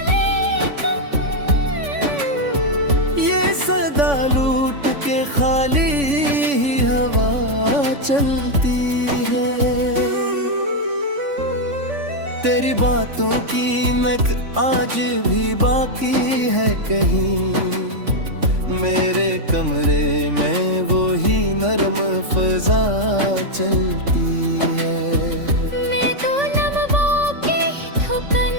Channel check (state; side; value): late; left; 3.5 ms